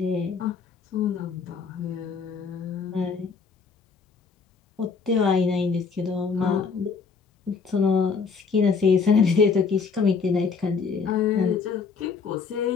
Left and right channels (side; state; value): right; quieter; 5.4 dB